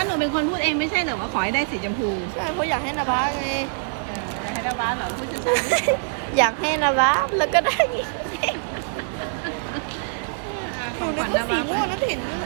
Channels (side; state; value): left; silent; 63 dB below the other